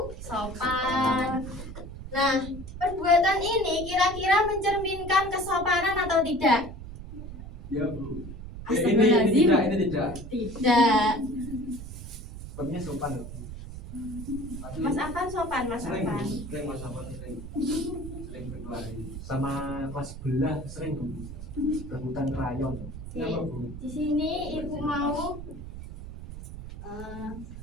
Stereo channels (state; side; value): noise; right; rumble, 11 dB below the sound